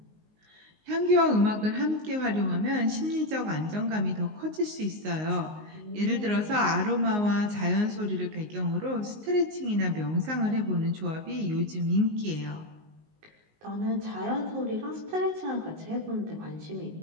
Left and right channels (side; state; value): left; late; 19 ms